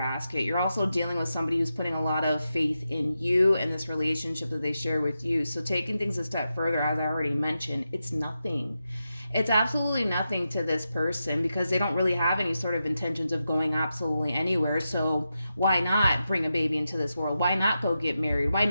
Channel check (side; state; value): both; inverted; correlation -0.89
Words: You're also dealing with somebody who's putting a lot of faith in you and this relationship that they share with you. So taking things a step further, as I already mentioned, it's nothing. It's absolutely nothing to this person because they don't really have any sort of intentions of going absolutely anywhere. So why not bring a baby into this world? Why not go get married? Why